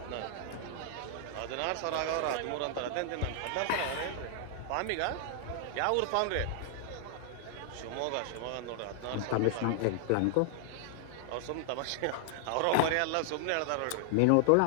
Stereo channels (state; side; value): different; both; correlation 0.00